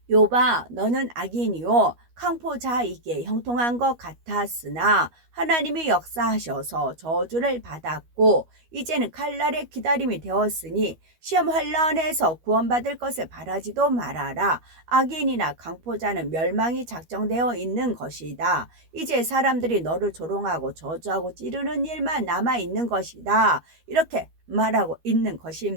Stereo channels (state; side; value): late; left; 12 ms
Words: 욥아 너는 악인이요 강포자이게 형통한 것 같았으나 하나님이 역사하셔서 저주를 받았고 이제는 칼날의 기다림이 되었으니 시험 환란에서 구원받을 것을 바라지도 말아라. 악인이나 강포자는 멸망이 작정되어 있는 것이다. 이제 사람들이 너를 조롱하고 저주하고 찌르는 일만 남아있는 것이다. 이렇게 말하고 있는